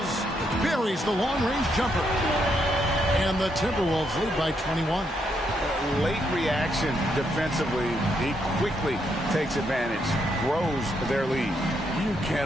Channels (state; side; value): normal; both; correlation 0.77